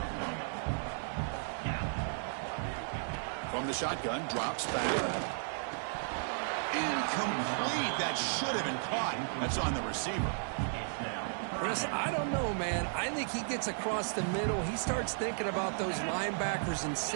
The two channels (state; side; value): silent; left; digital silence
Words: From the shotgun, drops back. Incomplete. That should have been caught. That's on the receiver. Chris, I don't know, man. I think he gets across the middle. He starts thinking about those linebackers and